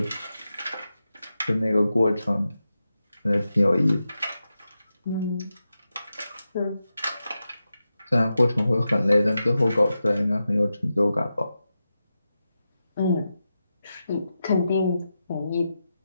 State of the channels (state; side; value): inverted; both; correlation -0.90